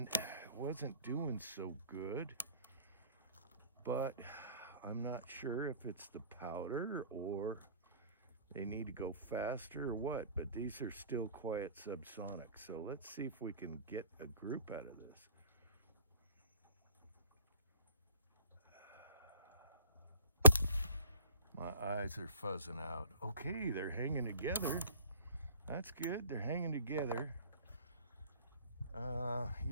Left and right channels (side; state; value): both; inverted; correlation -0.50